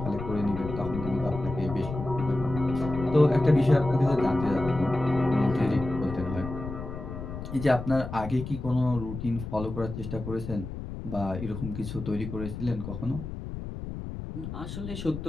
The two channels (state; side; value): noise; left; rumble, 8 dB below the sound